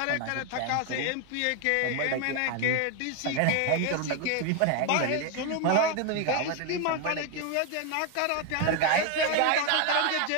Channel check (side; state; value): both; different; correlation 0.01